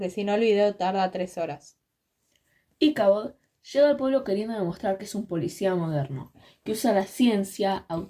si no el video tarda 3 horas. Ichabod llega al pueblo queriendo demostrar que es un policía moderno, que usa la ciencia,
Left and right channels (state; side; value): identical; both; correlation 1.00